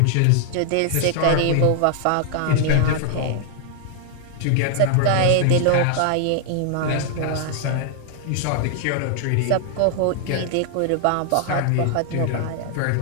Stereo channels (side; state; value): both; different; correlation 0.00